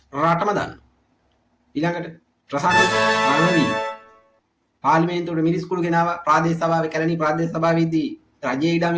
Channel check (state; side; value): identical; both; correlation 1.00